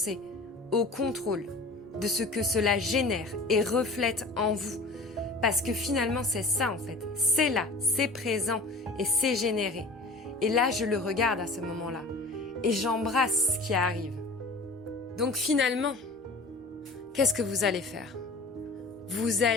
au contrôle de ce que cela génère et reflète en vous. Parce que finalement, c'est ça, en fait. C'est là, c'est présent et c'est généré. Et là, je le regarde à ce moment-là. Et j'embrasse ce qui arrive. Donc finalement, qu'est-ce que vous allez faire? Vous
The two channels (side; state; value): right; quieter; 3.0 dB